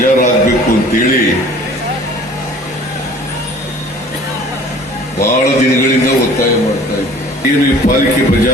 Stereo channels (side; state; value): both; normal; correlation 0.49